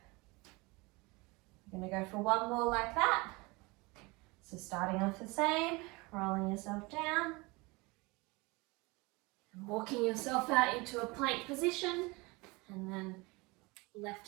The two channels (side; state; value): left; quieter; 25.0 dB